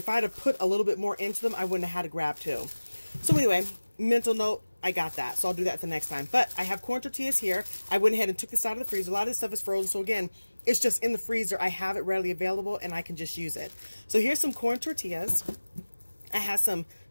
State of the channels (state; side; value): inverted; both; correlation -1.00